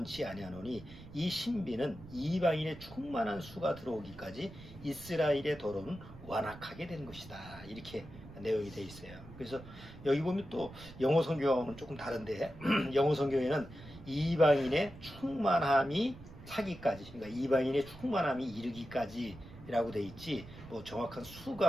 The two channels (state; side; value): noise; right; rumble, 16 dB below the sound